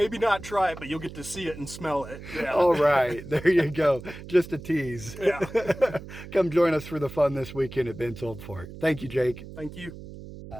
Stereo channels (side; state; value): right; noise; hum, 14 dB below the sound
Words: not try it, but you'll get to see it and smell it. Yeah. All right, there you go. Just a tease. Yeah. Come join us for the fun this weekend at Bent's Old Fort. Thank you, Jake. Thank you.